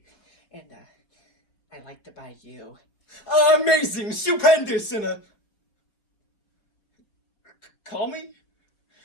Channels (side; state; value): right; late; 5.0 ms